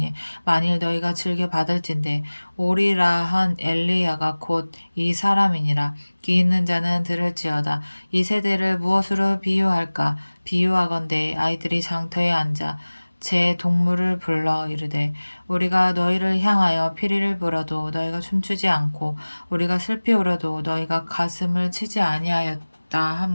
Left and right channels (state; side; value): inverted; both; correlation -1.00